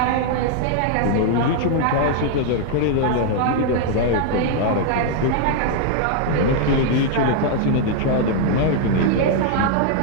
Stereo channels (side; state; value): both; different; correlation 0.00